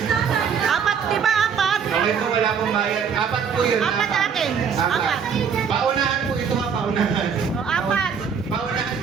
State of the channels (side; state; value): left; quieter; 6.8 dB